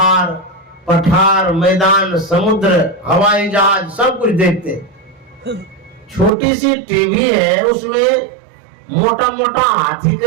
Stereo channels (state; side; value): drops out; left; at 6.3 s